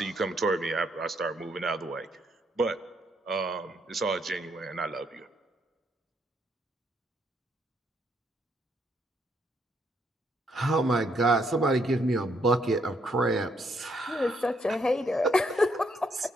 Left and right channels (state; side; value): normal; both; correlation 0.73